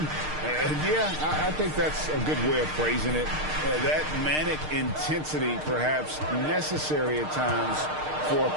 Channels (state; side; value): late; left; 6.5 ms